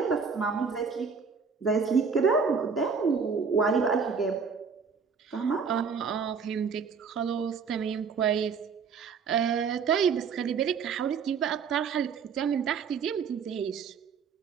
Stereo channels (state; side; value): quieter; left; 5.8 dB